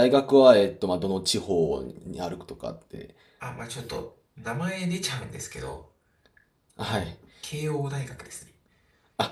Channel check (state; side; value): identical; both; correlation 1.00